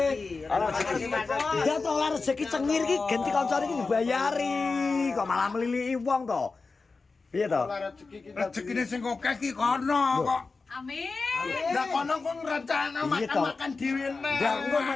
Dia tuh oleh rezeki cengir iki ganti kancane iki dibayari. Kok malah meliliki wong to. Piye to? Rezekine sing akeh ki kono kok. Amin. Lah kono kok ngrencana makan dhewe nek. Lah engko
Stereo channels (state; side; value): quieter; right; 4.1 dB